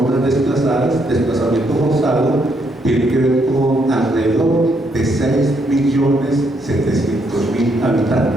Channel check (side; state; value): both; normal; correlation 0.74